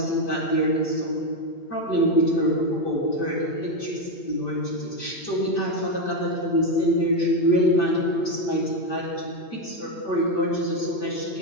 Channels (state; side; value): late; right; 8.6 ms